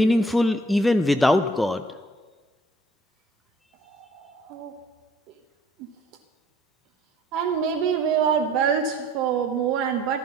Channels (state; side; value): normal; both; correlation 0.57